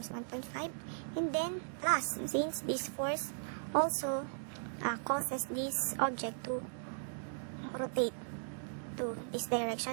1.5, and then plus, since this force also causes this object to rotate to this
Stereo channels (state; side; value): silent; left; digital silence